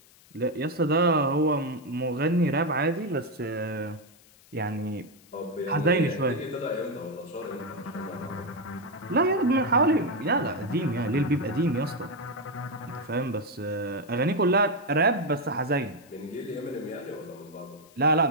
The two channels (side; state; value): left; noise; hiss, 27 dB below the sound